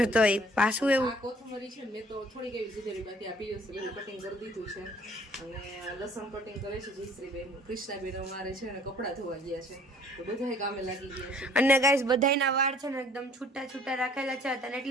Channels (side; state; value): both; normal; correlation 0.56